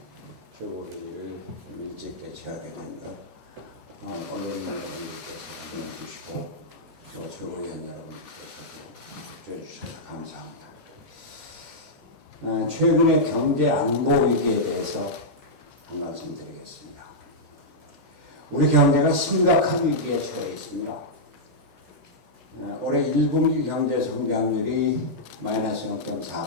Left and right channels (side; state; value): both; normal; correlation -0.09